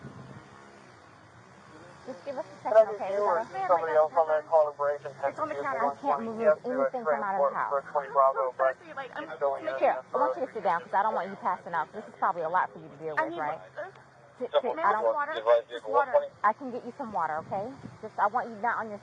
Just give us a second, okay? We gotta... Somebody else on that calibration. It's on the counter. I can't move anything from out of the house. So thirsty, like, I'm Here, I want you to sit down because I don't want you passing out. This is probably a lot for you to deal I with, need right? water. Sit. May I I have don't. water? Just water. I can get you some water, okay? Just I want you not on your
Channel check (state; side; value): identical; both; correlation 1.00